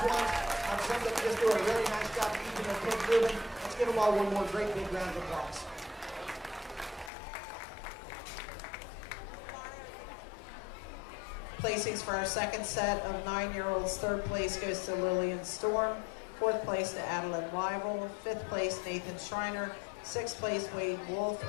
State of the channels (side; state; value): right; drops out; at 7.1 s